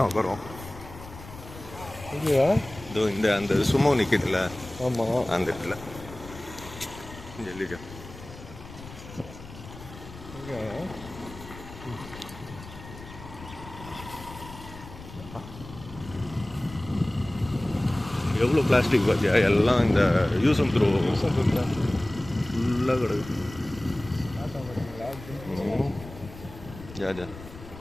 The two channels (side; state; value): left; noise; rumble, 15 dB below the sound